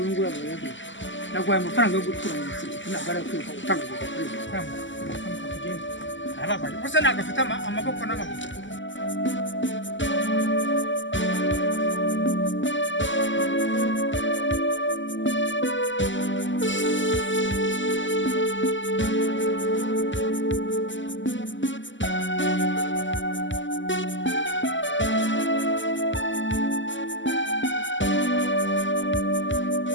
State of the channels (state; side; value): late; right; 0.54 ms